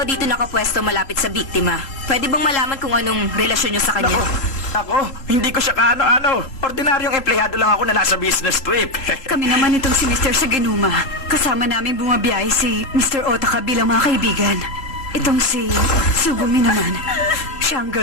dito nakapwesto malapit sa biktima. Pwede bang malaman kung anong relasyon nyo sa kanya? Ako, hindi ko siya kaano-ano. Ordinaryong empleyado lang ako na nasa business trip. Kami naman itong si Mr. Saganuma. Kasama namin bumabiyahe si Mr. Otaka bilang mga kaibigan. Itong si Sugumi naman. Siya ang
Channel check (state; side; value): late; right; 3.0 ms